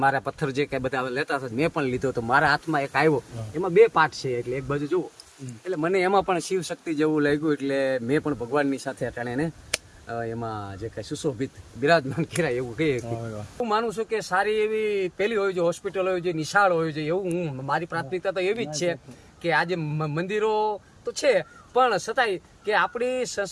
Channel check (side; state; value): both; identical; correlation 1.00